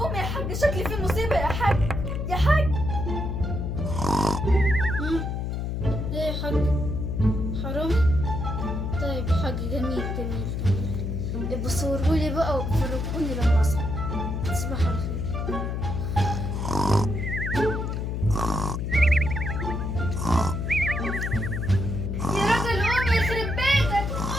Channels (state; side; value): noise; left; hum, 2 dB below the sound